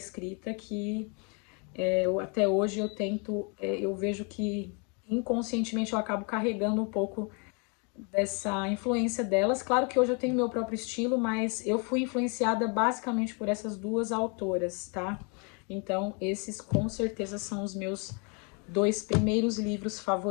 que Até hoje eu tento, eu vejo que inconscientemente eu acabo carregando um pouco dessa influência delas. Claro que hoje eu tenho meu próprio estilo, mas eu fui influenciada basicamente por essas duas autoras, tá? Então, esses com certeza são os meus dois primeiros livros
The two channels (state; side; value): quieter; right; 35.0 dB